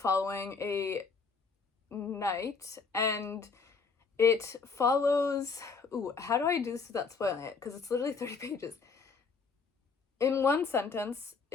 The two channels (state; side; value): quieter; right; 4.9 dB